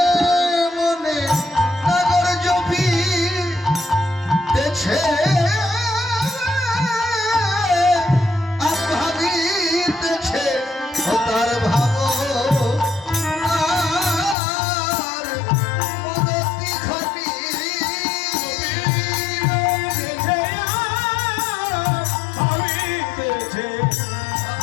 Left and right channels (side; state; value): right; drops out; at 14.4 s